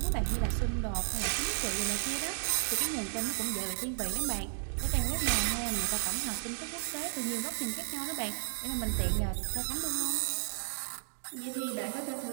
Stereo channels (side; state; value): left; silent; digital silence